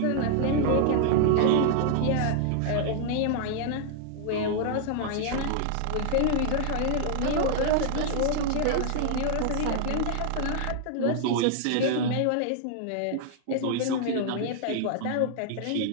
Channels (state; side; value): different; both; correlation -0.01